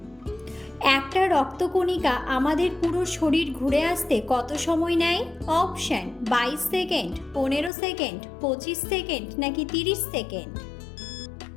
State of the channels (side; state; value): right; drops out; at 7.7 s